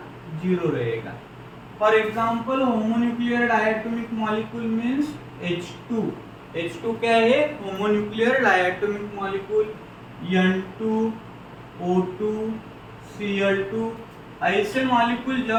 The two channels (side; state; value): both; identical; correlation 1.00